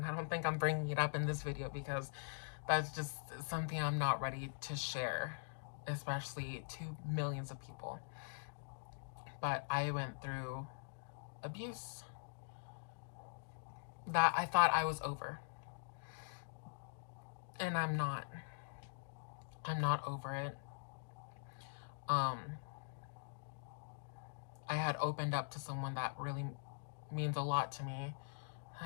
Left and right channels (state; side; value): silent; right; digital silence